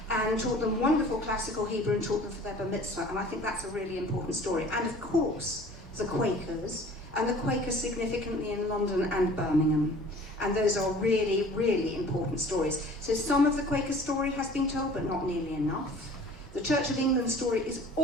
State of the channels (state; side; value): normal; both; correlation 0.47